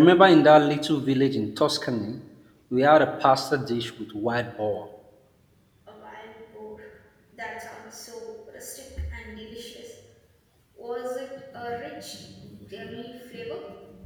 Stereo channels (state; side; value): identical; both; correlation 1.00